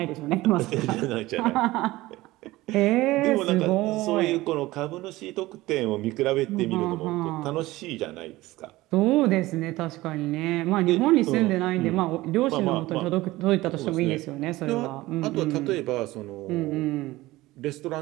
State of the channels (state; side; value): quieter; left; 18.5 dB